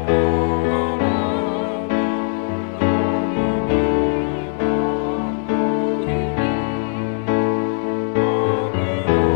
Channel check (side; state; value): right; silent; digital silence